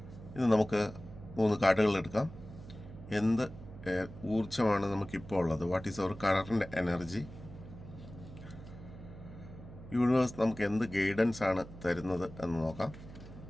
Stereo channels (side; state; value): right; noise; hum, 15 dB below the sound